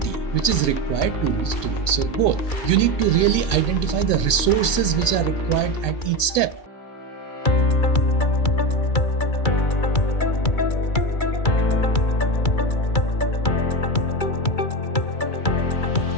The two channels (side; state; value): right; late; 2.2 ms